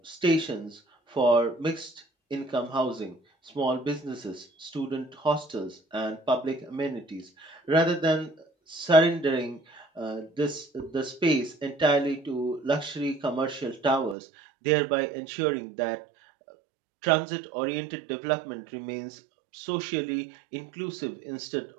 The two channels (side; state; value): left; drops out; at 14.2 s